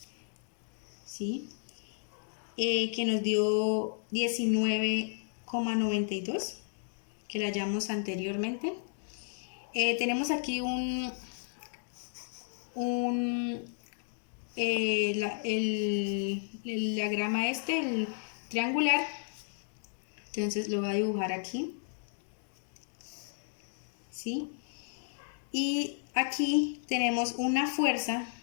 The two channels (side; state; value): right; silent; digital silence